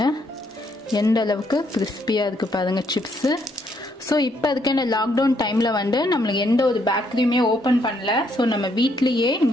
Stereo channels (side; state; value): both; normal; correlation 0.72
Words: எந்த அளவுக்கு கிறிஸ்பியாக இருக்குது பாருங்கள் சிப்ஸு. ஸோ இப்போ அதுக்கு இந்த லாக்டவுன் டைமில் நம்மளுக்கு எந்த ஒரு பேக்கரியுமே ஓப்பன் பண்ணல. ஸோ நம்ம வீட்லேயே